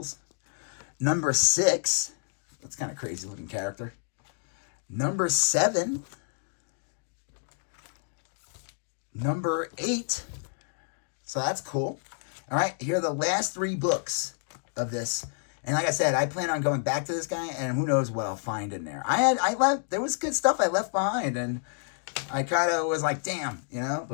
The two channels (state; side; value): silent; right; digital silence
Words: Number 6, that's kind of crazy looking character. Number 7. Number 8. So that's cool. All right, here are the last 3 books of this. And like I said, I plan on going back to this guy, and who knows what I'll find in there. There was good stuff I left behind, and I kind of was like, damn,